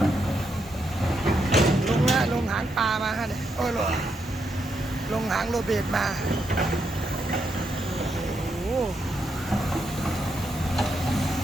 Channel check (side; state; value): both; normal; correlation 0.80